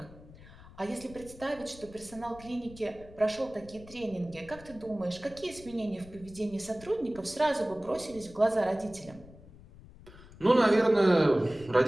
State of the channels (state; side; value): noise; left; rumble, 20 dB below the sound